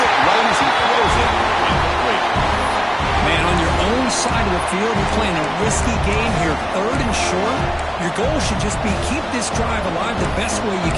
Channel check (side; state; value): both; identical; correlation 1.00